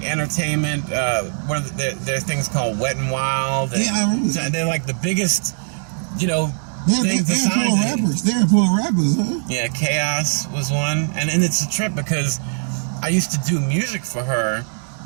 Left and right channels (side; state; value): left; silent; digital silence